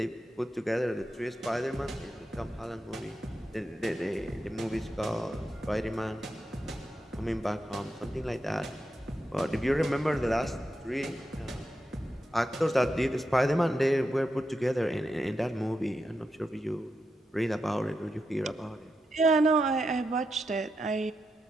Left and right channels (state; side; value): normal; both; correlation 0.86